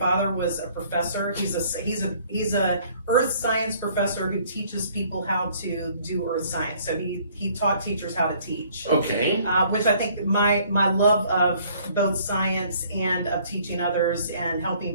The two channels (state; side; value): inverted; both; correlation -0.59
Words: was a professor. He's a earth science professor who teaches people how to do earth science. So he taught teachers how to teach. Okay. Which I think my love of both science and of teaching others and